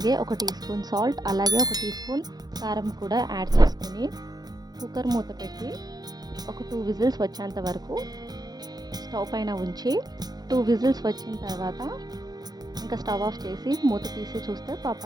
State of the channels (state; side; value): late; left; 0.19 ms